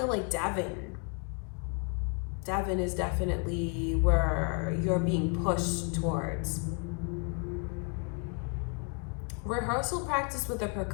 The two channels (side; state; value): right; quieter; 35.3 dB